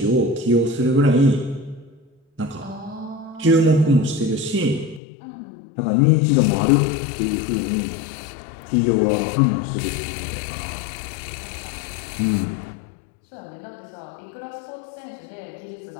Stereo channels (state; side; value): drops out; right; at 5.0 s